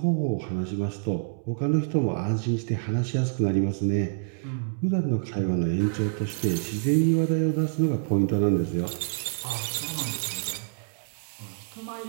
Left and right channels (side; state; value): left; silent; 60 dB below the other